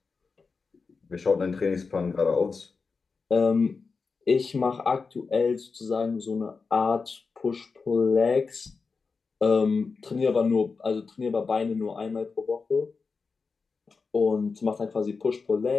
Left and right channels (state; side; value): quieter; right; 4.7 dB